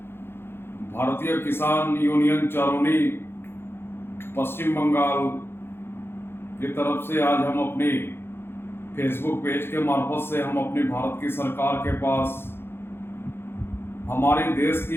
भारतीय किसान यूनियन चारोनी पश्चिम बंगाल की तरफ से आज हम अपनी फेसबुक पेज के मार्फत से हम अपनी भारत की सरकार के पास हमारी देश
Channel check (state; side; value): late; right; 0.11 ms